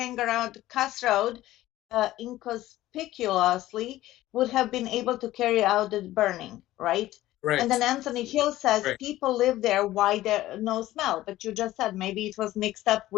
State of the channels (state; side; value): quieter; right; 15.5 dB